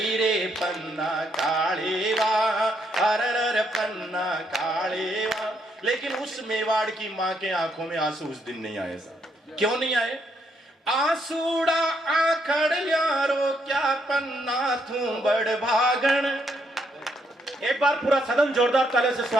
रे पन्ना कालीवा, अरर पन्ना कालीवा। लेकिन उस मेवाड़ की माँ के आंखों में आंसू उस दिन नहीं आए साहब। क्यों नहीं आए? आंसूड़ा आखड़िया रो क्या पन्ना थू बड़ भागण। एक बार पूरा सदन जोरदार तालियों से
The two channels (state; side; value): normal; both; correlation 0.74